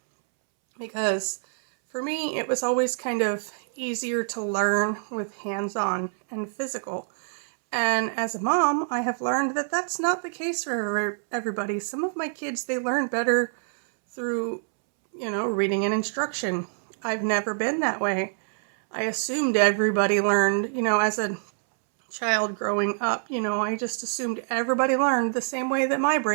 Because for me, it was always kind of easier to learn with hands-on and physical. And as a mom, I have learned that that's not the case for everybody. Some of my kids, they learn better through, you know, reading an instruction. I've never been that way. I assumed everybody learned, you know, as a child growing up, you know, I just assumed everybody learned the same way that my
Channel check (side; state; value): left; silent; 61 dB below the other